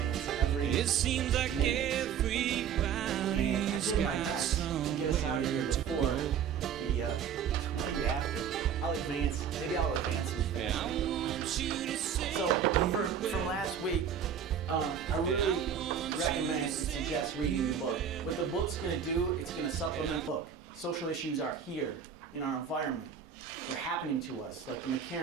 every It seems like minute. everybody's And I did my got best to get us out of here before the 20 after. I'll advance. Maybe I'll advance some And faster. I want you to say So from last week, I really recommend and suggest reading the book. What the book's going to do, it's going to supplement the book. Social issues are here in our environment. They're happening to us, like the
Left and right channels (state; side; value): quieter; left; 7.9 dB